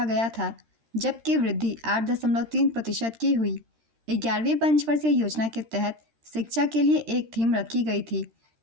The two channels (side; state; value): left; late; 13 ms